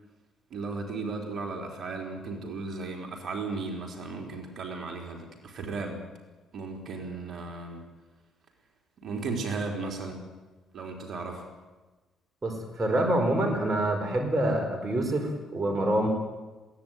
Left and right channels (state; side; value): normal; both; correlation 0.72